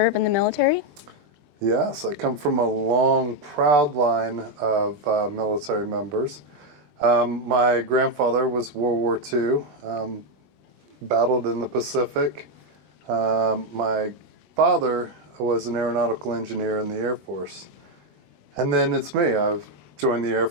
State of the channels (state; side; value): late; left; 20 ms